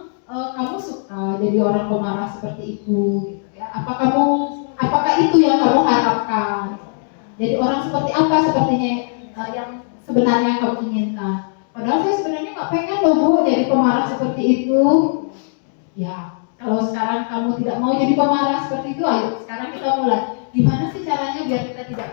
kamu suka jadi orang pemarah seperti itu, gitu ya? Apakah itu yang kamu harapkan? Jadi orang seperti apa sepertinya yang sebenarnya kamu inginkan? Padahal saya sebenarnya nggak pengen loh Bu jadi pemarah seperti itu. Ya, kalau sekarang kamu tidak mau jadi pemarah seperti itu, ayo sekarang kita mulai. Gimana sih caranya biar kita tidak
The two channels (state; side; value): silent; right; digital silence